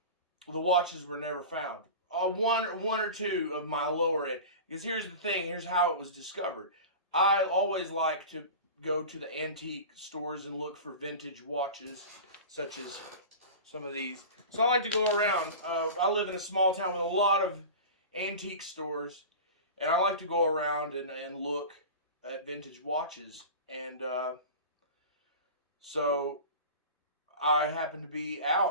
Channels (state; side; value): inverted; both; correlation -0.32